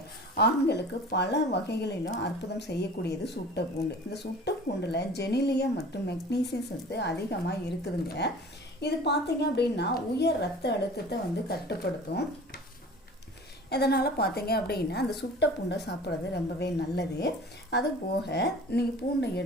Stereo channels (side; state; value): both; normal; correlation 0.42